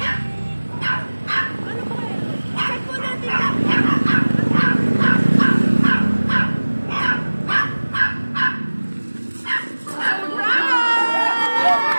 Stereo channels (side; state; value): both; inverted; correlation -1.00